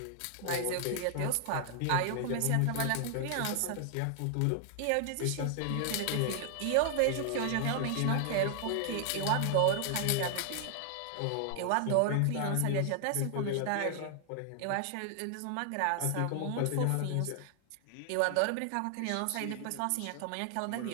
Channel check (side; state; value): both; different; correlation 0.00